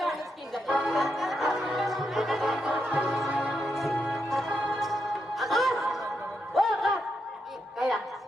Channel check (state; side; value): normal; both; correlation 0.82